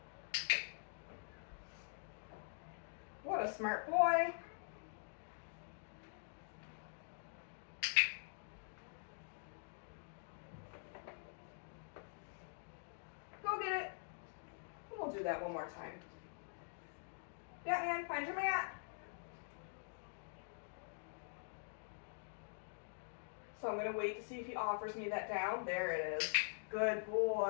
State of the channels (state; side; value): silent; right; digital silence